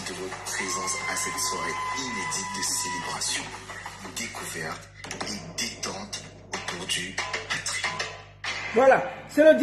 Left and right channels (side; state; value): both; identical; correlation 1.00